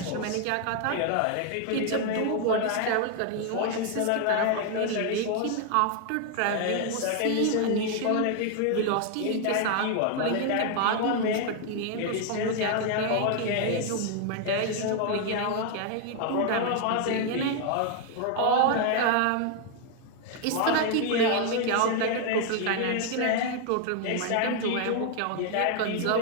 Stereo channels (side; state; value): both; different; correlation 0.00